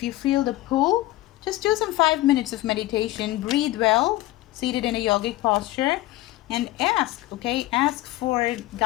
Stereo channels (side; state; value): right; quieter; 17.1 dB